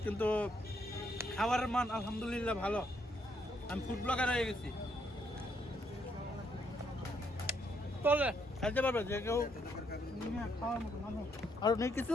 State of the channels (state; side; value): normal; both; correlation 0.73